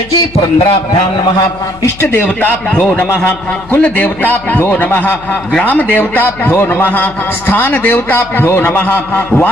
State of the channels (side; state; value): left; noise; hum, 20 dB below the sound